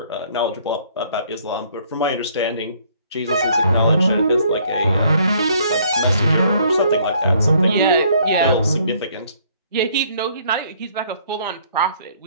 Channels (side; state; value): both; inverted; correlation -0.63